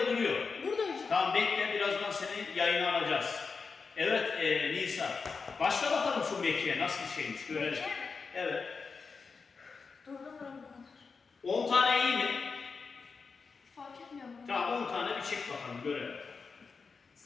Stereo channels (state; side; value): quieter; right; 4.9 dB